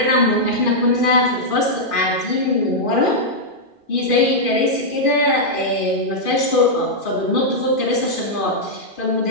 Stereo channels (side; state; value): right; late; 2.5 ms